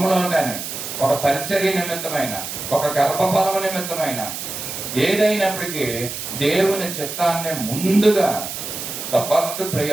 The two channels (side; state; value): right; noise; hiss, 7 dB below the sound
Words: కానీ, ఒక పరిచర్య నిమిత్తమైన, ఒక గర్భఫలము నిమిత్తమైన, ఏదైనప్పటికీ దేవుని చిత్తాన్ని ముందుగా the first